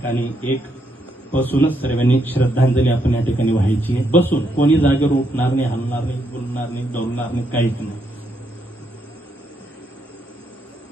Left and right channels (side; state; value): both; normal; correlation 0.77